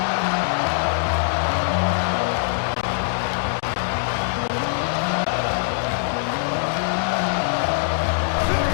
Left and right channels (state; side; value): silent; right; digital silence